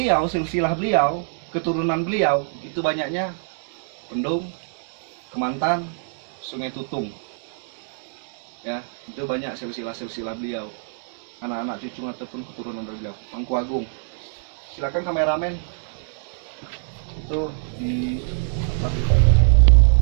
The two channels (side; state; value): left; silent; digital silence